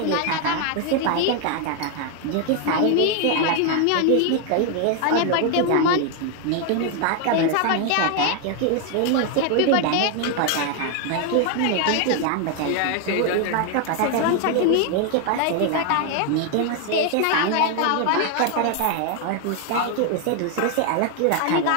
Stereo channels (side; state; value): both; different; correlation 0.00